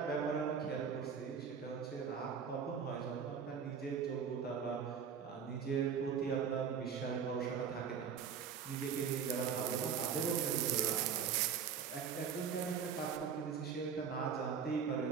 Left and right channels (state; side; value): quieter; left; 6.9 dB